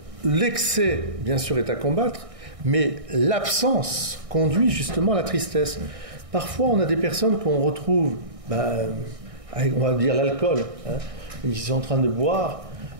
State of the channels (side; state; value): left; late; 1.6 ms